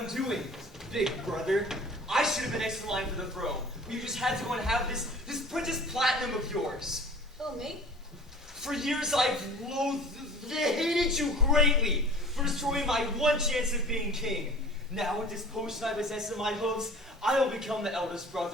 doing, big brother. I should have been next in line for the throne. You just had to go and have this Princess Platinum of yours. Oh, me? For years I've hated you greatly for destroying my one chance of being king. Now with this potion I possess in my hooves, I will become the eldest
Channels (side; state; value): both; normal; correlation 0.44